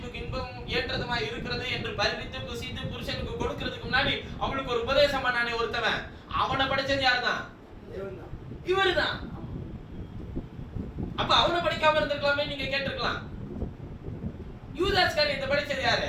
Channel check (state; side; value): identical; both; correlation 1.00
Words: இன்பம் ஏற்றதுமா இருக்கிறது என்று பறித்து புசித்து புருஷனுக்கு கொடுக்கிறதுக்கு முன்னாடி அவளுக்கு ஒரு உபதேசம் பண்ணானே ஒருத்தவன், அவனை படைச்சது யாருதான்? இவருதான். அப்ப அவனை படிக்காம இருந்திருக்கலாமே நீங்க கேட்டிருக்கலாம். யூதாஸ் காரியத்தை படிச்சது